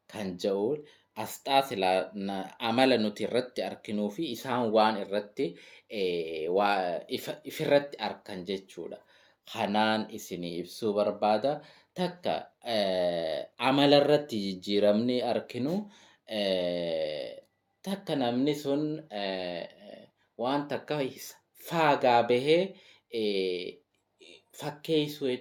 kan jedhu asxaa amala nuti irratti arginuu fi isaan waan irratti ifirratti arkan jechuudha. Kanaan isinii ibsuu barbaada. Takka amala irratti jijjiiramni arginu takka namni sun waan takka faagaa bahee fakkeessuu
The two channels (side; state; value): both; identical; correlation 1.00